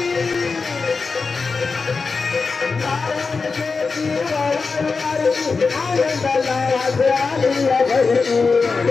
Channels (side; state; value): right; quieter; 4.5 dB